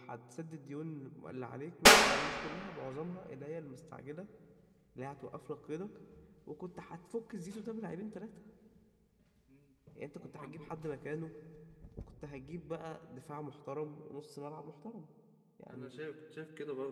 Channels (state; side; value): identical; both; correlation 1.00